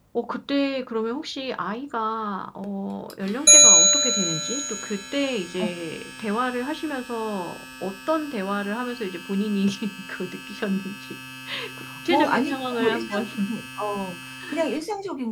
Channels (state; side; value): identical; both; correlation 1.00